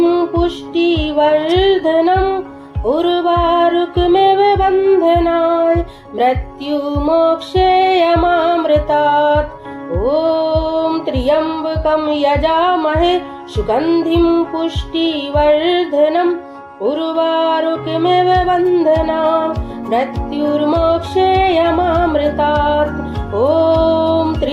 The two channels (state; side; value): identical; both; correlation 1.00